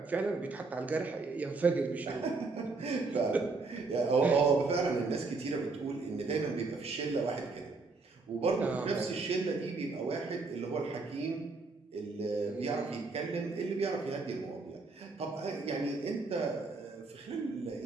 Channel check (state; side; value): quieter; left; 3.9 dB